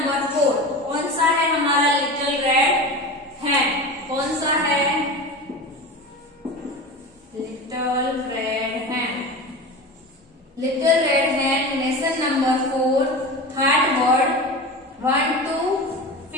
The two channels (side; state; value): both; normal; correlation 0.29